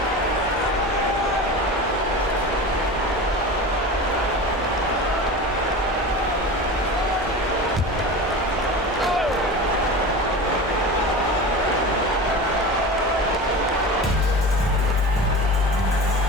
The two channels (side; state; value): both; normal; correlation 0.31